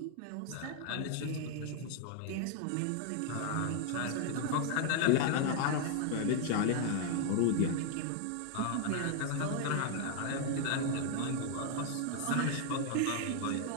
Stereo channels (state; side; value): different; both; correlation 0.00